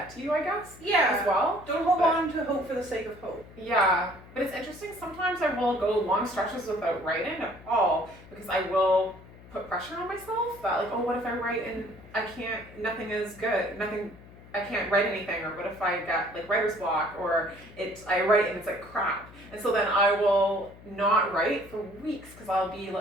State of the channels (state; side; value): noise; left; hum, 20 dB below the sound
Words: to you, I guess. Yeah. As well. Don't hold on to hope for the sake of hope. Yeah, but it's interesting. Sometimes I will go long stretches without writing at all because I will put pressure on myself that like, oh, what if I write and nothing is good, I can't write anything, or what if I get like writer's block, or I write and it's like crap. And so then I will not write for weeks because I'll be,